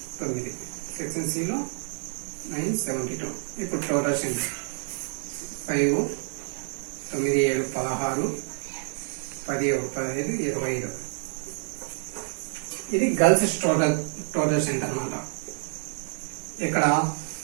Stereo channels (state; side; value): silent; left; 58 dB below the other